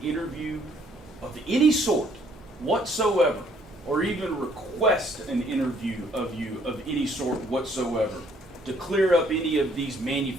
interview of any sort whatsoever, or even request an interview of you of any sort whatsoever to clear up any of these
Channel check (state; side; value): normal; both; correlation 0.64